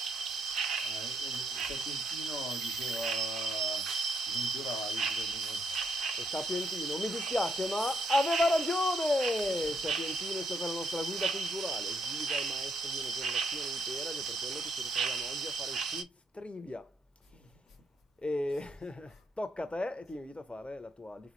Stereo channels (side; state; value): both; normal; correlation 0.74